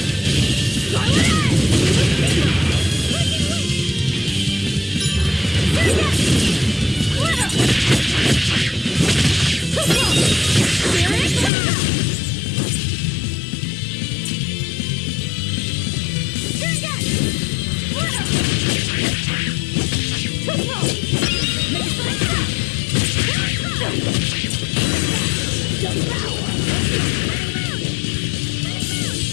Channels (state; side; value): drops out; right; at 11.5 s